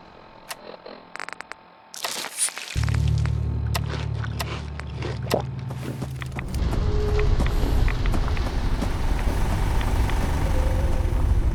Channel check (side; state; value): both; identical; correlation 1.00